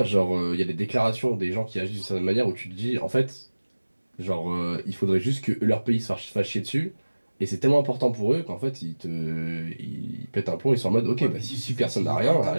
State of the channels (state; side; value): inverted; both; correlation -1.00